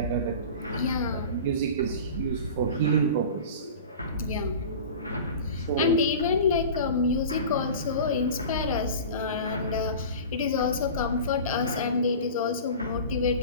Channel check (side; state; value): both; inverted; correlation -0.36